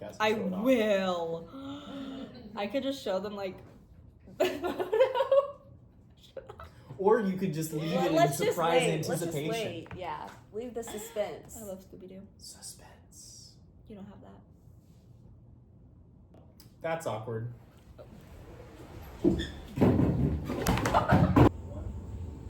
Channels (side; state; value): both; identical; correlation 1.00